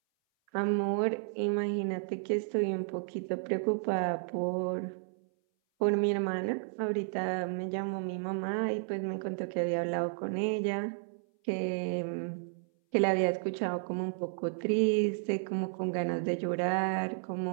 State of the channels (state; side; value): silent; left; 56 dB below the other